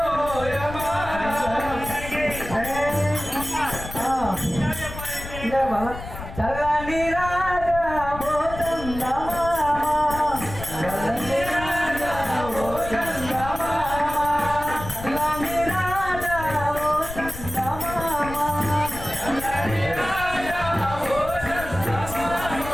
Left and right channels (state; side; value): noise; left; rumble, 11 dB below the sound